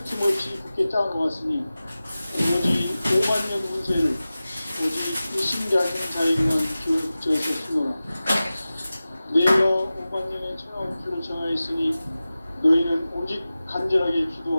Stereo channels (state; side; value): inverted; both; correlation -0.96